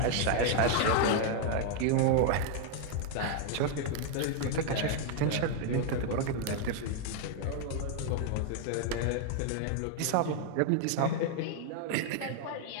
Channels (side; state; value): both; different; correlation 0.00